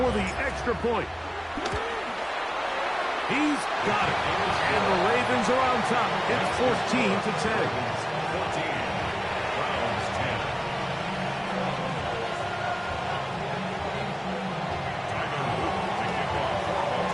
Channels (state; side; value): identical; both; correlation 1.00